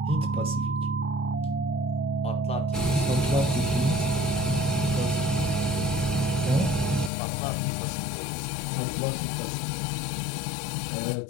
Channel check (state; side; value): drops out; right; at 7.1 s